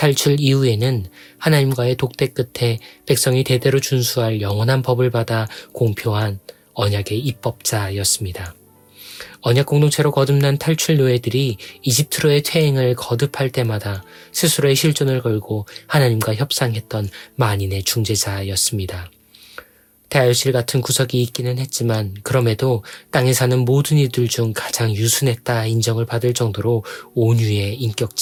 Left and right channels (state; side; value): identical; both; correlation 1.00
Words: 이후에는 하나님과의 독대 끝에 백성이 대대로 준수할 영원한 법을 받아 공표한 언약의 입법자였습니다. 언약 공동체로 거듭난 탈출 노예들이 이집트로의 퇴행을 거듭할 때마다 스스로의 실존을 걸고 하나님과 협상했던 만인의 중재자였습니다. 대하유실 같은 구석이 있기는 했지만 그럼에도 땅에 사는 모든 이들 중 가장 유순했다 인정을 받을 정도로 온유의